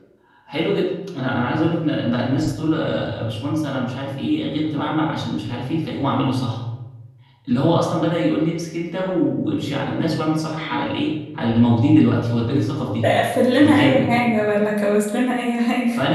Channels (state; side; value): identical; both; correlation 1.00